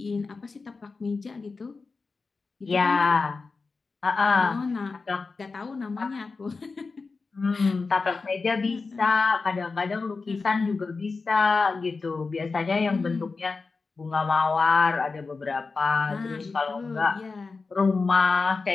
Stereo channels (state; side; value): quieter; right; 4.2 dB